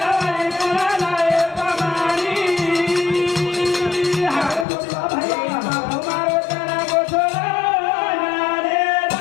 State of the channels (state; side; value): drops out; right; at 4.7 s